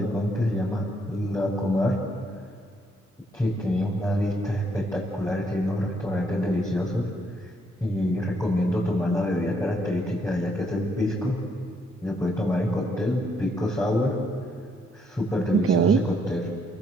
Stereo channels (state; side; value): normal; both; correlation 0.72